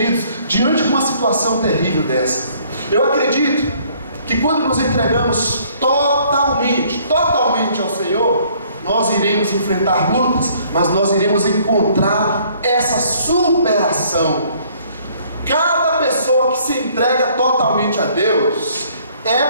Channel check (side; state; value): both; inverted; correlation -0.61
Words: diante de uma situação terrível dessa. Eu acredito que quando nos entregamos totalmente ao Senhor, nós iremos enfrentar lutas, mas nós iremos encontrar essa superação. Cada pessoa que se entrega totalmente a Deus,